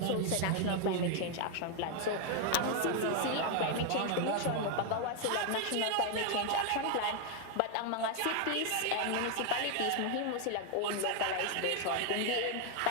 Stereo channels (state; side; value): different; both; correlation 0.00